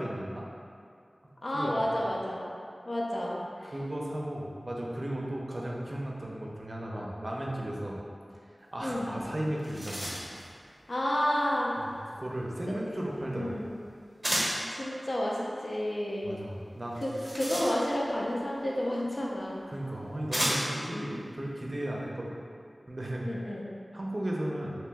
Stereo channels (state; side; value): normal; both; correlation 0.98